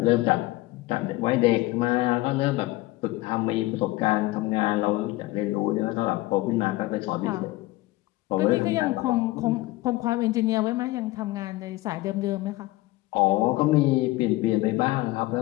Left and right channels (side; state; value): right; quieter; 19.2 dB